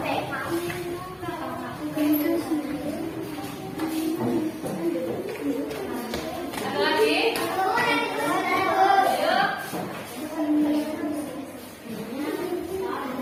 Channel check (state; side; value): identical; both; correlation 1.00